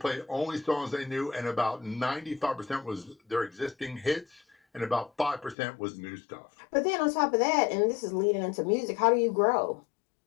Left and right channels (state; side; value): drops out; right; at 5.6 s